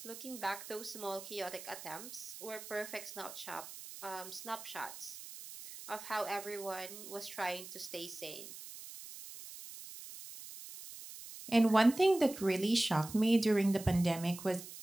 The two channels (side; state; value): right; noise; hiss, 13 dB below the sound